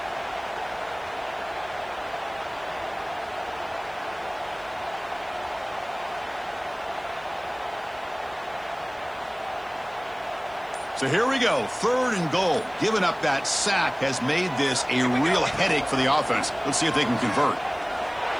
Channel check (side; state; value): left; noise; hiss, 29 dB below the sound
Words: So here we go, 3rd and goal. Giving up that sack has made this a real headache for the offense. Let's see if they can convert.